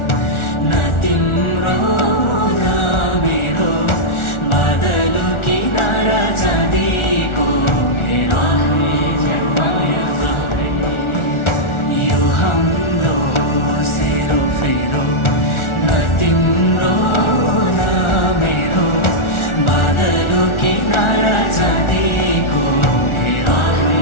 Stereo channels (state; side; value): late; right; 1.4 ms